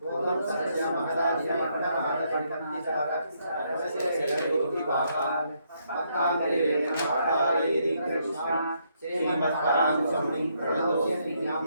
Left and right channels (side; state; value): both; inverted; correlation -0.74